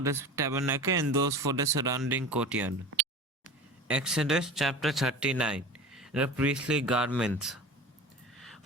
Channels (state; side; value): normal; both; correlation 0.34